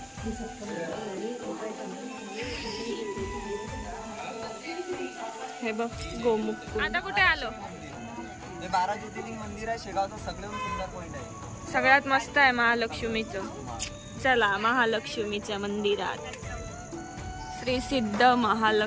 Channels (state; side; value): identical; both; correlation 1.00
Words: हे बघ गोमुख. आता कुठे आलो? हे 12 ज्योतिर्लिंग मंदिर आहे शेगावचं, सगळ्यात सुंदर पॉइंट आहे. सगळ्यात मस्त आहे महालक्ष्मीचं. चला महालक्ष्मीच्या मंदिरात. श्री सिद्ध